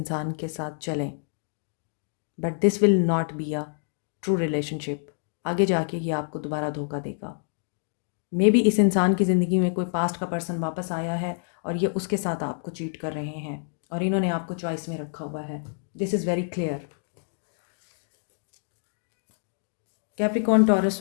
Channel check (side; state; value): right; silent; digital silence